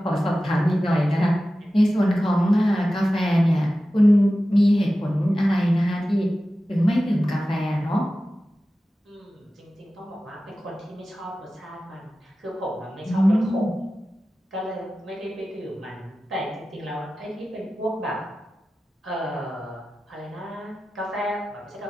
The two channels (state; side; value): normal; both; correlation 0.94